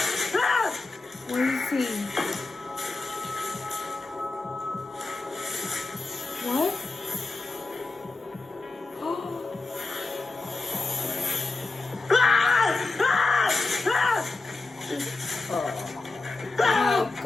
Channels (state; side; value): quieter; right; 3.4 dB